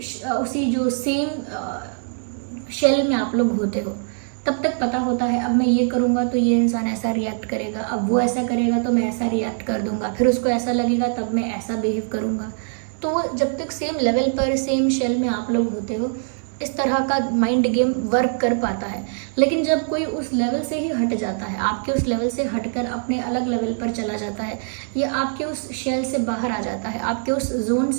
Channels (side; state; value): left; silent; digital silence